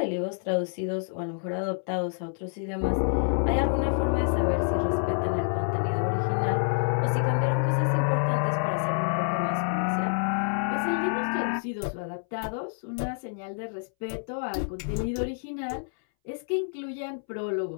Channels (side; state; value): right; silent; 59 dB below the other